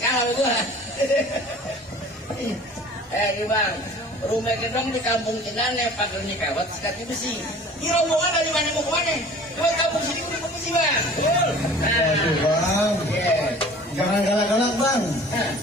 gua. Bang, rumah gedong di kampung Cinane pagernya kawat sekatnya besi. Ini rombongan dari mana mau kemana? Ke kampung sini udah permisi bang. Waduh bang, jangan galak-galak bang.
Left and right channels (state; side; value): normal; both; correlation 0.46